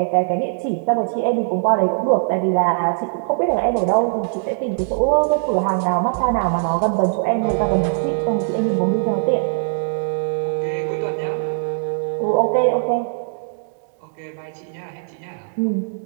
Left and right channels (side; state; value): left; silent; digital silence